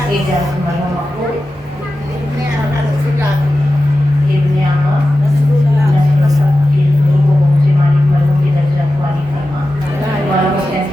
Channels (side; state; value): both; normal; correlation 0.93